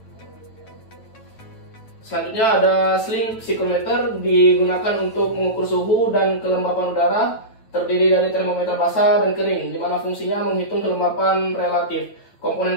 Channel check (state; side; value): late; right; 8.8 ms